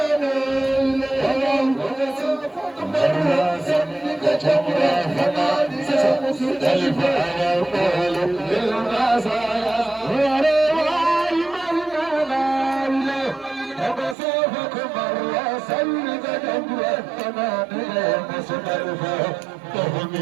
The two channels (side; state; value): left; drops out; at 14.2 s